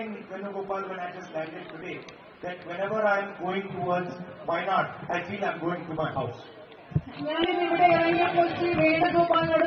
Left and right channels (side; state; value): both; identical; correlation 1.00